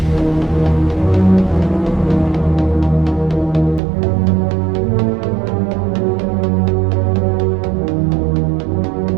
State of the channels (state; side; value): drops out; left; at 3.8 s